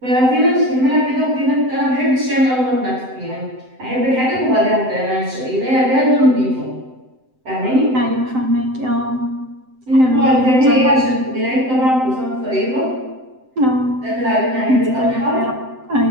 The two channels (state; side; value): late; left; 7.8 ms